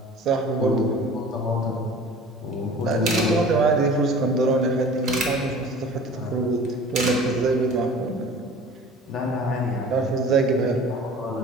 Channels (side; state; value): both; normal; correlation 0.43